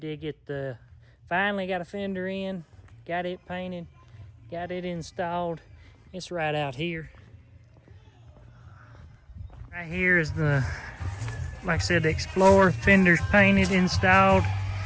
get finally got a fender in, got it painted, got it installed. It's right out here. Right here is like I said, the Explorer. Fender's painted, installed.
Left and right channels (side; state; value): both; identical; correlation 1.00